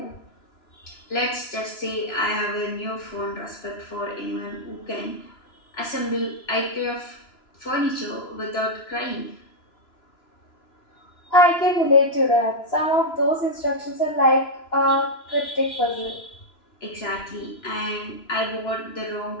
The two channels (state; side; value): late; right; 2.9 ms